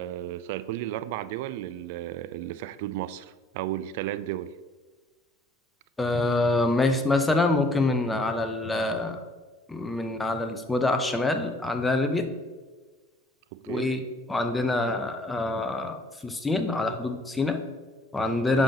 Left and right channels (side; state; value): both; normal; correlation 0.59